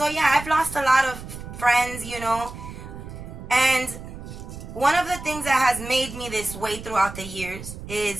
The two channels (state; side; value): noise; right; rumble, 12 dB below the sound